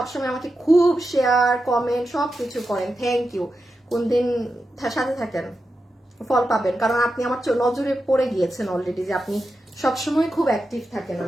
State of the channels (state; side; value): normal; both; correlation 0.89